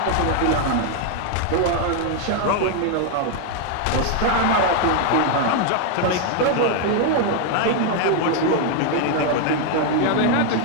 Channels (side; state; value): both; different; correlation 0.01